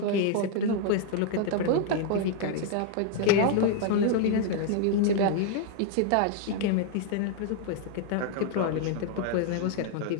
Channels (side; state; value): both; different; correlation 0.00